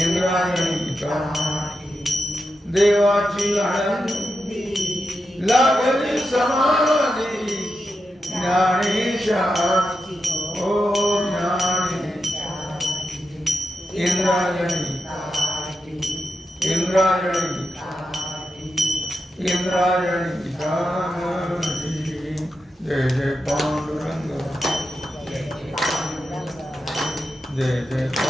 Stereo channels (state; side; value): normal; both; correlation 0.88